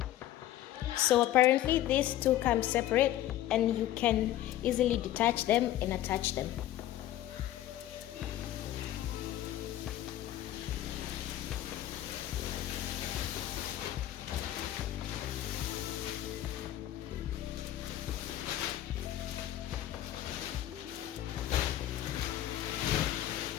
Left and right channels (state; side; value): quieter; right; 13.3 dB